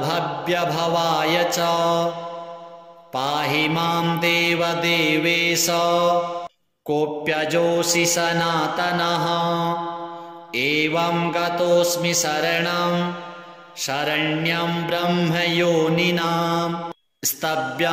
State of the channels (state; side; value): identical; both; correlation 1.00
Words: च पाहि मां देवदेवेश कोऽप्यजोऽसि सनातनः। एवं गतोऽस्मि शरणं शरण्यं ब्रह्मयोनिनां